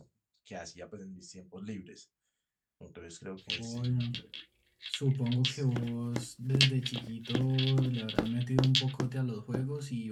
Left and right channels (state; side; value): identical; both; correlation 1.00